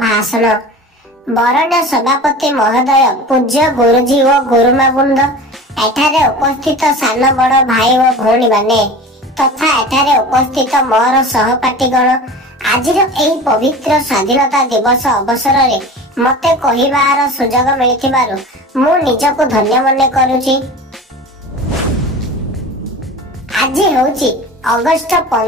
बरण्य सभापति महोदय पूज्य गुरुजी और गुरुमा वृंद एठारे उपस्थित सान बड़ भाई और भौणी माने तथा एठारे उपस्थित मोर सहपाठीगण आज पवित्र स्वाधीनता दिवस अवसर में मते कहिबार सुजोग मिलिथिबारु मु निजको धन्य मने करूची। आज होची अगस्त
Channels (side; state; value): both; normal; correlation 0.36